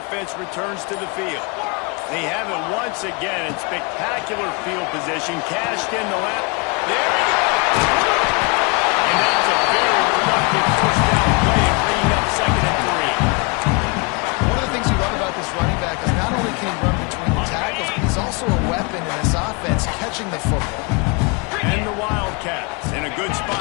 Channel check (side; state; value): right; quieter; 30.5 dB